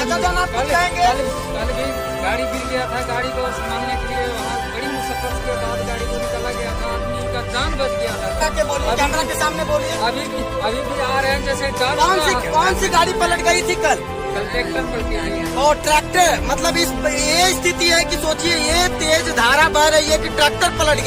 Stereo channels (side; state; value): both; identical; correlation 1.00